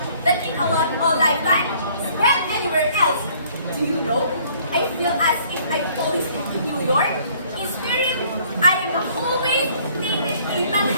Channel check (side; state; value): both; inverted; correlation -0.59